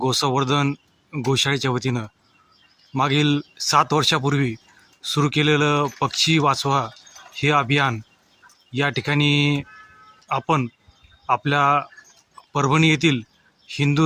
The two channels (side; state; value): both; identical; correlation 1.00